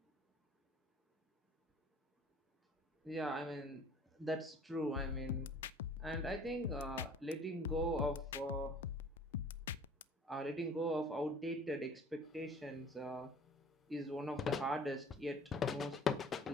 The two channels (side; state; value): both; normal; correlation 0.50